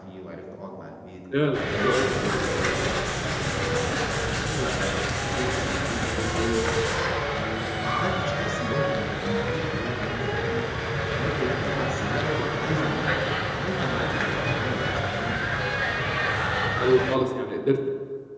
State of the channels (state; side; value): identical; both; correlation 1.00